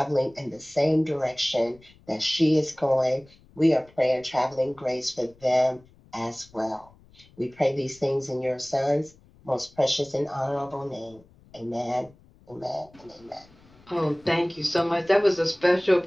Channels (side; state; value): left; noise; rumble, 27 dB below the sound